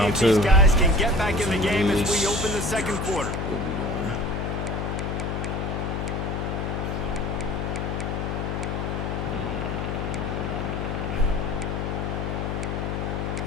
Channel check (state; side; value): noise; left; hum, 1 dB below the sound